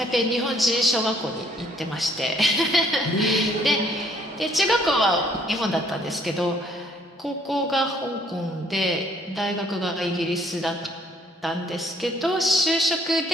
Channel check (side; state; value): both; normal; correlation 0.63